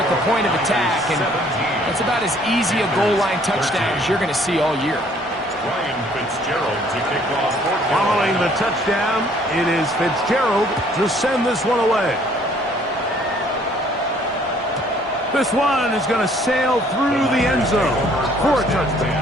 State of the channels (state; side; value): normal; both; correlation 0.60